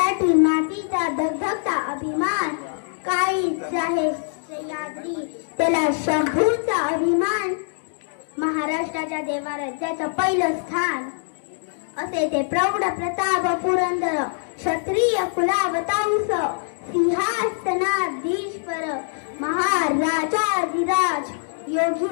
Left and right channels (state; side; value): silent; right; digital silence